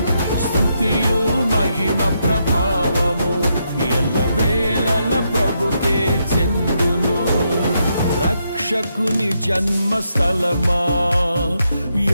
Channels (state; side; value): inverted; both; correlation -0.80